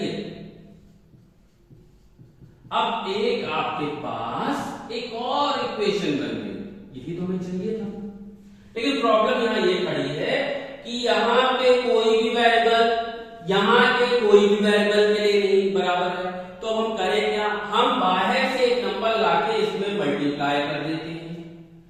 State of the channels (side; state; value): both; identical; correlation 1.00